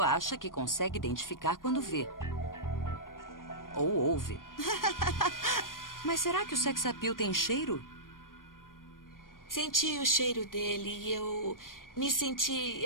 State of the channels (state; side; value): late; right; 0.90 ms